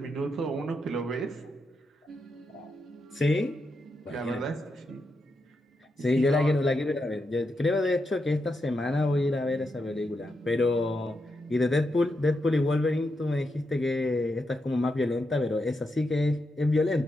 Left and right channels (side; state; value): both; normal; correlation 0.85